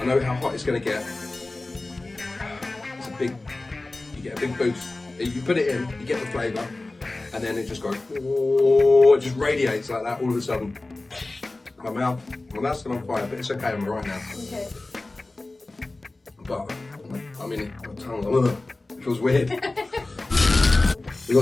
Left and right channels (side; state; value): right; quieter; 3.0 dB